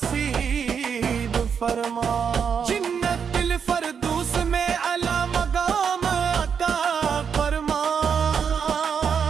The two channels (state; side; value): quieter; left; 6.9 dB